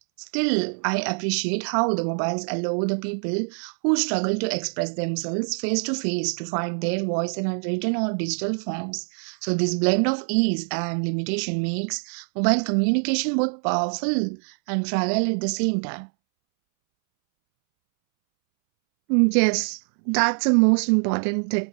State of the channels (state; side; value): silent; left; 62 dB below the other